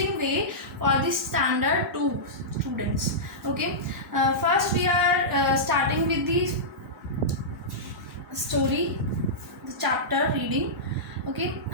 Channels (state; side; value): normal; both; correlation -0.15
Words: way for the standard 2 students. Okay, first we are starting with the story, the chapter reading. Okay,